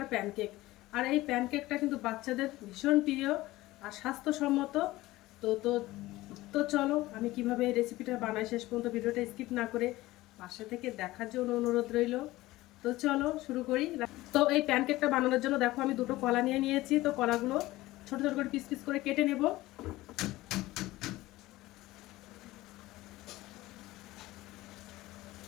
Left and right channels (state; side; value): quieter; right; 18.0 dB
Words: প্যানকেক। আর এই প্যানকেকটা কিন্তু বাচ্চাদের ভীষণ প্রিয় আর স্বাস্থ্যসম্মত। তো তো তো চলো আমি কিভাবে এই রেসিপিটা বানাই শেষ পর্যন্ত ভিডিওটা স্কিপ না করে পাশে থেকে দেখার জন্য অনুরোধ রইল। তো চলো শুরু করি। তো এই প্যানকেকটা বানানোর জন্য দেখো আমি দুটো কলা নিয়ে নিয়েছি। তো কলাগুলো ছোট ছোট করে পিস পিস করে কেটে নেব।